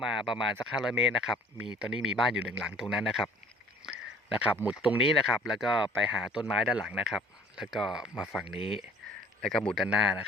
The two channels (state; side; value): normal; both; correlation 0.52